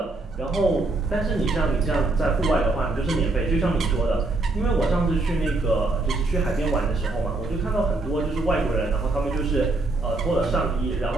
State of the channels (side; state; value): left; quieter; 3.1 dB